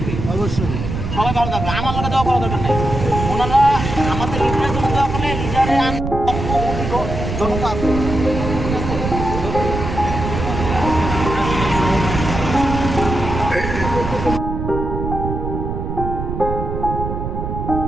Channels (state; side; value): noise; right; rumble, 4 dB below the sound